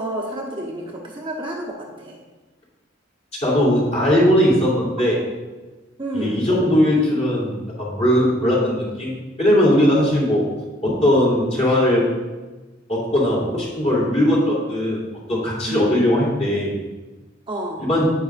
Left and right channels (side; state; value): both; normal; correlation 0.61